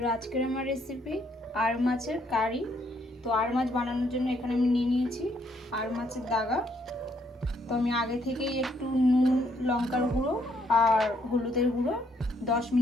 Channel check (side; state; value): both; normal; correlation 0.71